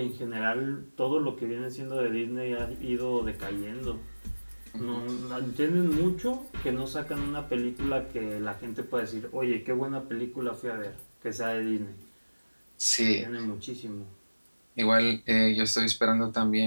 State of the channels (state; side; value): inverted; both; correlation -1.00